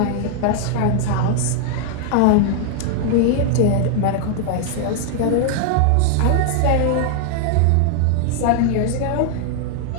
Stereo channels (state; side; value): different; both; correlation 0.00